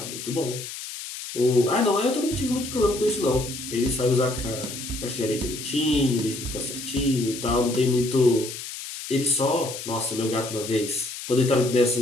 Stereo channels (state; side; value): noise; left; hiss, 9 dB below the sound